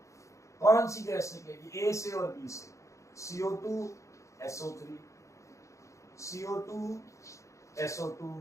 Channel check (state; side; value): late; right; 0.15 ms